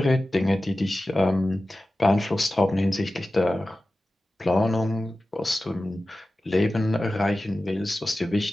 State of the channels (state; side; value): normal; both; correlation 0.95